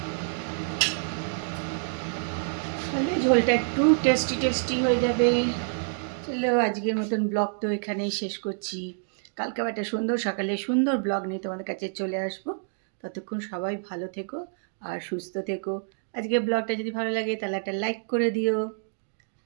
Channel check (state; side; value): silent; left; digital silence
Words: তাহলে ঝোলটা একটু টেস্টি টেস্টি হয়ে যাবে। চলো, আজকের মতন ব্লগ তো এখানেই শেষ করছি। কালকে আবার একটা সুন্দর সকালে সুন্দর ব্লগ নিয়ে তোমাদের কাছে চলে আসবো। ততক্ষণ সবাই ভালো থেকো আর সুস্থ থেকো। আজকের ব্লগটা যদি ভালো লাগে তাহলে একটা লাইক করে দিও।